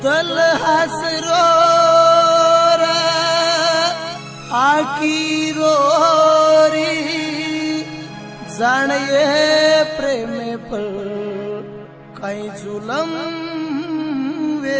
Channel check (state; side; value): identical; both; correlation 1.00